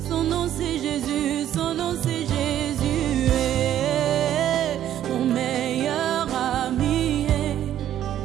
son nom c'est Jésus, son nom c'est Jésus. Mon meilleur ami,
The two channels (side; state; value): left; quieter; 11.4 dB